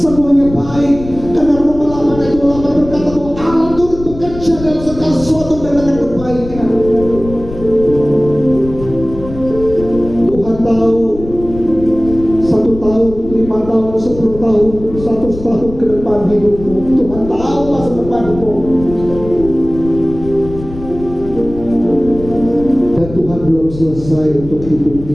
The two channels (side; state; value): left; noise; rumble, 12 dB below the sound